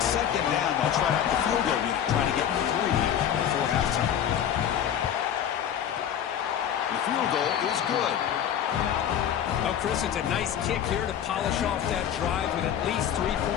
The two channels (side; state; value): right; quieter; 9.5 dB